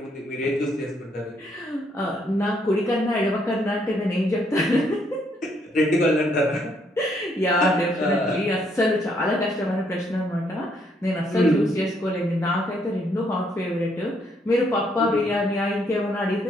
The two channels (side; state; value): both; normal; correlation 0.71